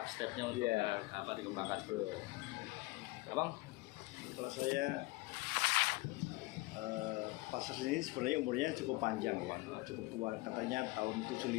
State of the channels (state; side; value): quieter; right; 22.3 dB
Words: untuk apa dikembangkan. Abang? Kalau saya pasar sini sebenarnya umurnya cukup panjang ya, cukup tua, katanya tahun